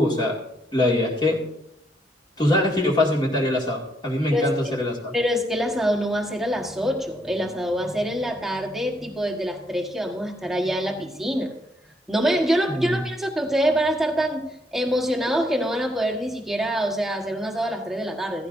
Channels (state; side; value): normal; both; correlation 0.73